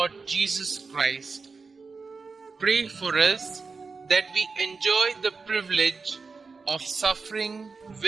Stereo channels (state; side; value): quieter; left; 4.6 dB